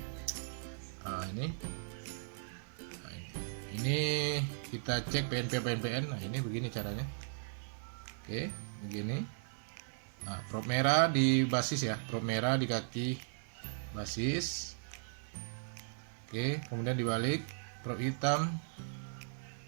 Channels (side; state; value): left; silent; digital silence